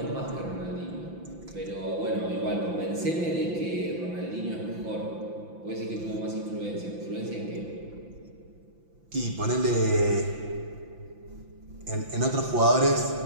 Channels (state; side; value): late; left; 5.9 ms